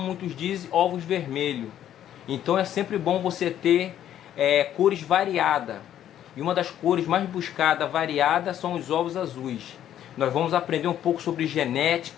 dizem, ovos vermelhos. Então é sempre bom você ter cores variadas. E uma das cores mais buscadas, variadas, são os ovos azuis. Nós vamos aprender um pouco sobre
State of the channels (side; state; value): right; quieter; 11.0 dB